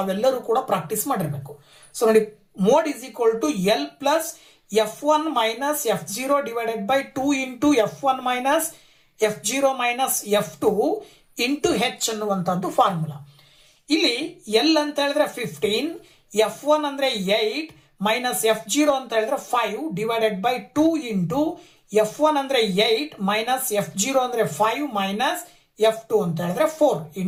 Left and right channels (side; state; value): both; identical; correlation 1.00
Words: ಕೂಡ ಪ್ರಾಕ್ಟೀಸ್ ಮಾಡಿರ್ಬೇಕು. ಸೊ ನೋಡಿ, mode is equal to L plus F1 minus F0 divided by 2 into F1 minus F0 minus F2 into H ಅನ್ನುವಂಥದ್ದು ಫಾರ್ಮುಲಾ. ಇಲ್ಲಿ L ಅಂತ ಹೇಳಿದ್ರೆ 15, F1 ಅಂದ್ರೆ 8 ಮೈನಸ್ F0 ಅಂತ ಹೇಳಿದ್ರೆ 5 ಡಿವೈಡೆಡ್ ಬೈ 2 ಇಂಟು F1 ಅಂದ್ರೆ 8 ಮೈನಸ್ F0 ಅಂದ್ರೆ 5 ಮೈನಸ್ F2 ಅಂತ ಹೇಳಿದ್ರೆ 4